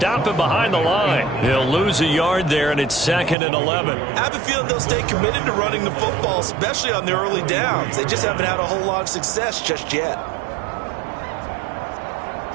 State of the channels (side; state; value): left; drops out; at 3.4 s